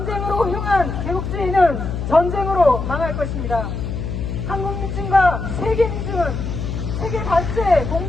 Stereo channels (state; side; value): noise; left; hum, 4 dB below the sound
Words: 향한 제국주의는 전쟁으로 망할 것입니다. 한국 민중과 세계 민중은 세계 반세